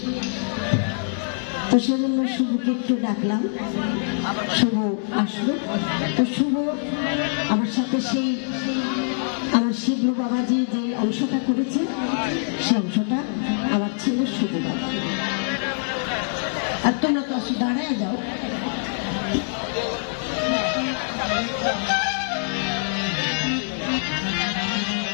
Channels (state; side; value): silent; right; digital silence